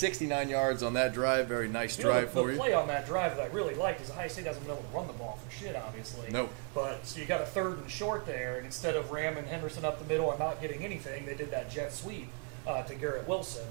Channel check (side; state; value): left; quieter; 37.6 dB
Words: yards on that drive. Very nice drive. The play on that drive that I really liked is Ohio State hasn't been able to run the ball for shit, obviously. No. But so you got a 3rd and short there, and instead of ramming Henderson up the middle and not getting anything, they did that jet sweep to Garrett